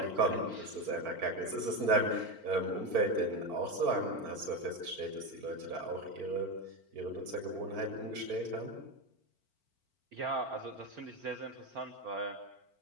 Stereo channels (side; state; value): left; late; 4.4 ms